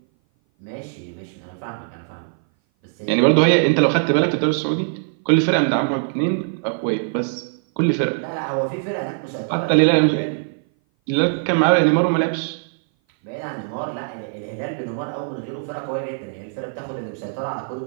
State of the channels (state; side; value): silent; left; 58 dB below the other